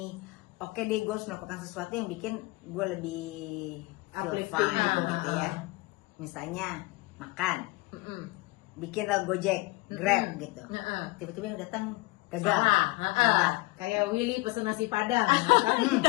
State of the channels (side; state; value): right; quieter; 22.3 dB